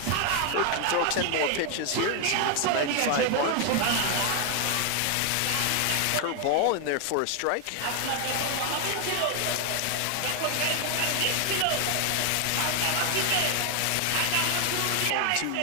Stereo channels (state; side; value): different; both; correlation 0.00